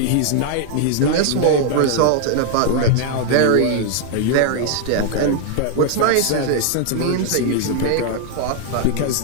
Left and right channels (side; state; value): both; different; correlation 0.00